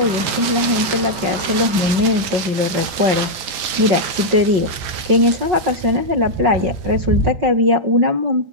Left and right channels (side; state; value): left; late; 5.4 ms